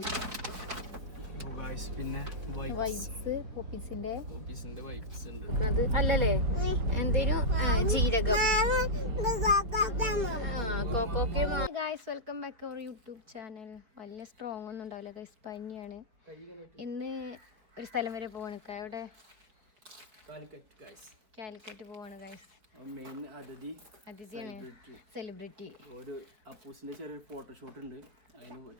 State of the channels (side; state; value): left; late; 4.7 ms